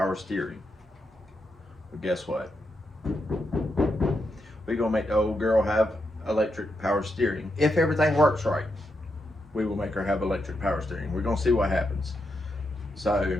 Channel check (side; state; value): both; normal; correlation 0.83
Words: steering. But guess what? We're going to make the old girl have electric power steering. If everything works right, we will make her have electric power steering. We're going to see what happens. So